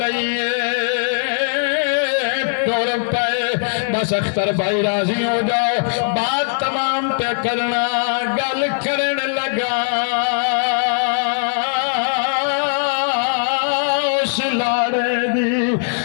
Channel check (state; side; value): silent; right; digital silence